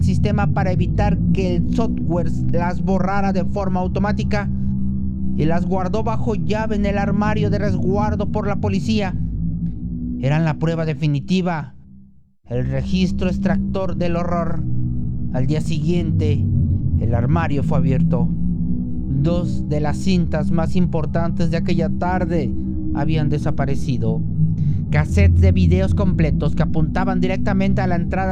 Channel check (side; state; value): both; identical; correlation 1.00